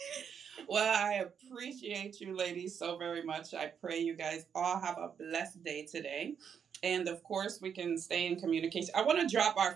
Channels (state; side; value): quieter; left; 7.5 dB